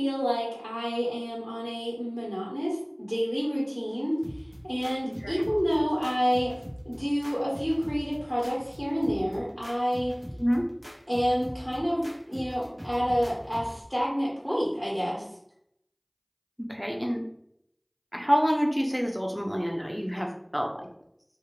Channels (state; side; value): identical; both; correlation 1.00